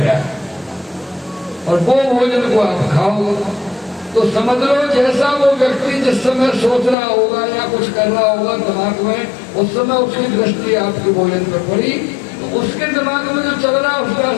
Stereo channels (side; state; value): right; drops out; at 7.0 s